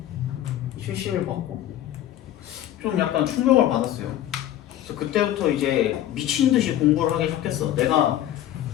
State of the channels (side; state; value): right; quieter; 12.4 dB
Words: 70을 받고 좀 약간 충격을 받았어요. 그래서 그때부터 이제 미친 듯이 공부를 하기 시작했어. 내가